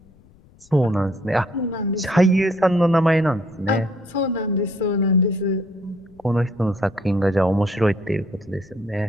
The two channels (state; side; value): noise; left; rumble, 28 dB below the sound